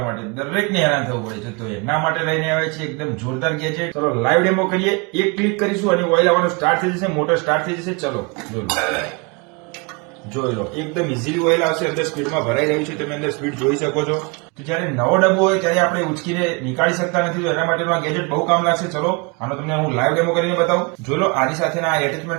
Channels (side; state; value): left; quieter; 30.0 dB